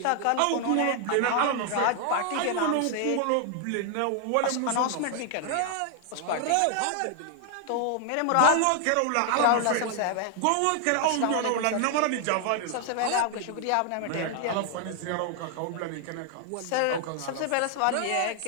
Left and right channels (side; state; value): both; different; correlation 0.00